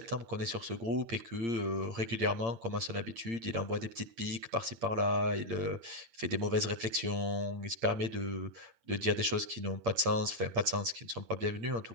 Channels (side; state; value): left; late; 8.7 ms